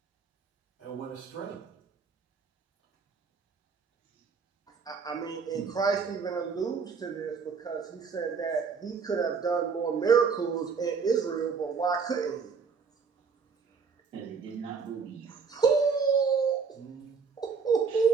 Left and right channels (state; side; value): quieter; left; 5.6 dB